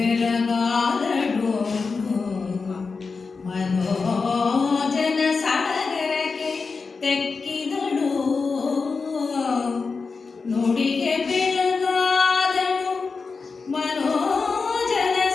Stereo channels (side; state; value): right; quieter; 4.6 dB